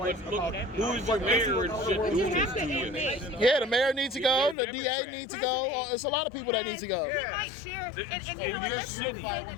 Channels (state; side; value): drops out; right; at 4.5 s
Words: look, who is your mayor and shit? Who is this to you? Yeah, the mayor needs to go. The DA needs to go. It's a lot of people that need to go. We might share, and Your let's not city. say